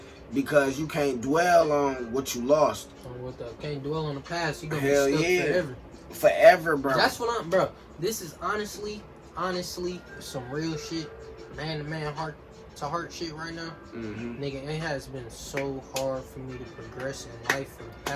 because you can't dwell on what you lost. Can't dwell on the past. You gonna be stuck forever. Forever, bro. That's what I'm, bro. This is honestly some real shit. Man to man, heart to heart shit right now. Nigga, it has been so hard for me to progress in life for the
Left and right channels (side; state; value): both; identical; correlation 1.00